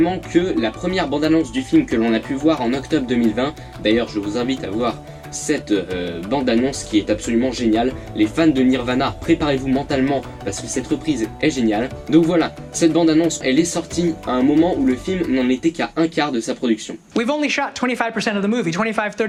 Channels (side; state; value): both; identical; correlation 1.00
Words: que la première bande-annonce du film que l'on a pu voir en octobre 2020, d'ailleurs je vous invite à voir cette bande-annonce qui est absolument géniale. Les fans de Nirvana, préparez-vous mentalement parce que cette reprise est géniale. Donc voilà, cette bande-annonce, elle est sortie à un moment où le film n'en était qu'à un quart de sa production. We've only shot 25% of the movie,